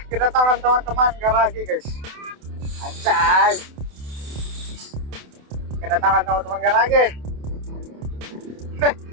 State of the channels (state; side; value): late; left; 28 ms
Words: kedatangan teman-teman garagi guys. Anjay, kedatangan teman-teman garagi.